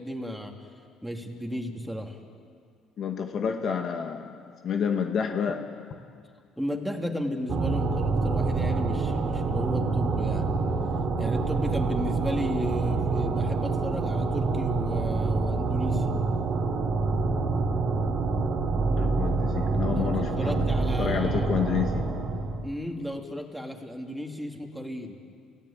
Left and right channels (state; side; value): normal; both; correlation 0.73